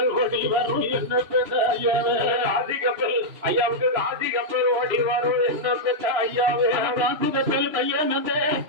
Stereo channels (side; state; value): left; late; 3.0 ms